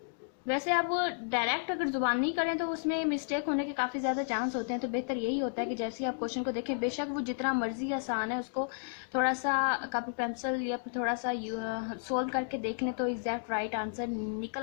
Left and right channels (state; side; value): silent; right; digital silence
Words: वैसे आप डायरेक्ट अगर जुबान नहीं करें तो उसमें मिस्टेक होने के काफ़ी ज़्यादा चांस होते हैं। तो बेहतर यही होता है कि जैसे ही आप क्वेश्चन को देखें, बेशक वो जितना मर्जी आसान है, उसको थोड़ा सा कॉपी पेंसिल या फिर थोड़ा सा सोल्व करके देख लें तो एग्जैक्ट राइट आंसर निकल